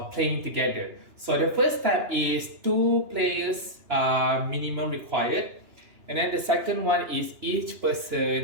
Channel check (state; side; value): late; left; 2.9 ms